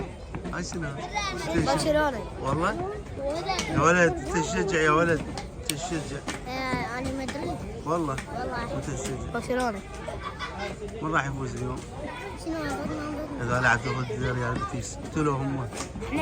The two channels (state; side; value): identical; both; correlation 1.00